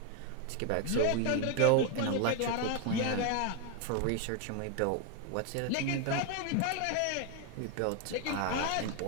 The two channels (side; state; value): both; different; correlation 0.01